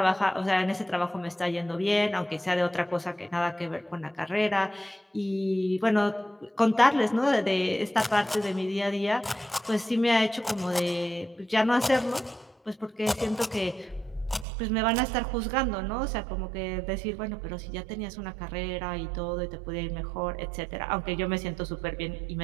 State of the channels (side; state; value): left; drops out; at 14.5 s